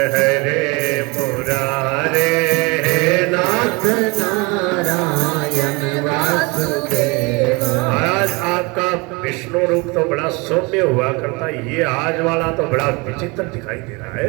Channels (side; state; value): left; quieter; 27.1 dB